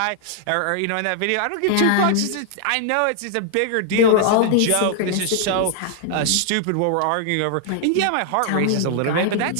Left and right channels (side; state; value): both; different; correlation 0.00